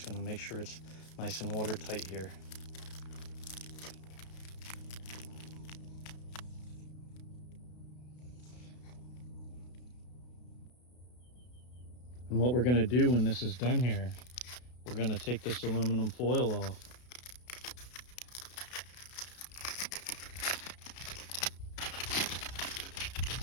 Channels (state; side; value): late; right; 32 ms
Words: going to make sure it's nice and watertight here. And what we're going to do when this is done here, we're going to take this aluminum foil off.